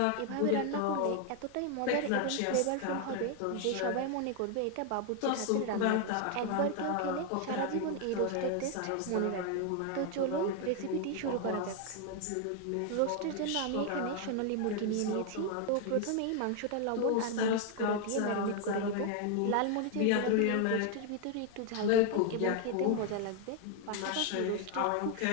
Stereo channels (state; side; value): different; both; correlation 0.00